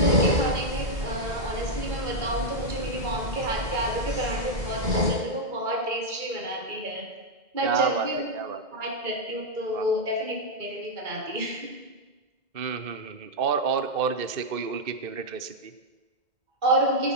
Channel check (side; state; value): left; late; 2.1 ms